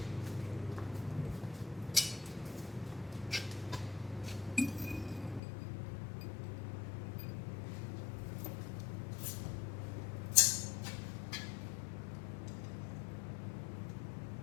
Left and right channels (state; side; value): drops out; right; at 5.4 s